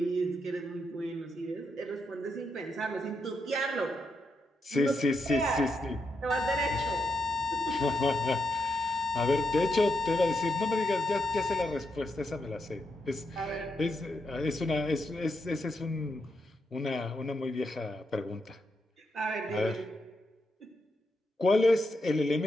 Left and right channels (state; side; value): normal; both; correlation 0.82